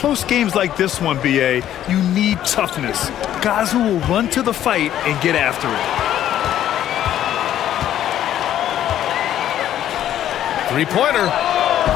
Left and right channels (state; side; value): quieter; right; 11.5 dB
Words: games like this one, BA, you need toughness. Guys who will run to the fight and get after it. 3-pointer.